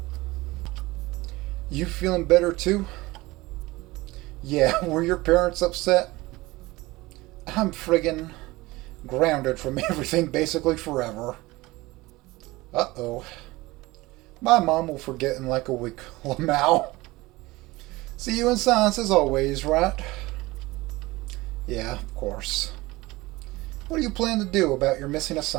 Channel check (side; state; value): left; quieter; 20.5 dB